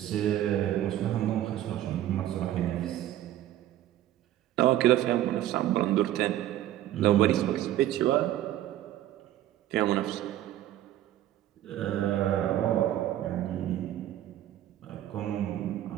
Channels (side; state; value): left; quieter; 13.0 dB